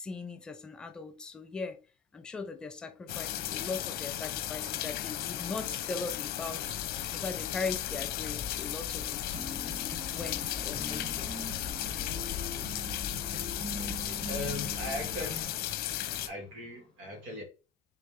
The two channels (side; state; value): right; quieter; 7.3 dB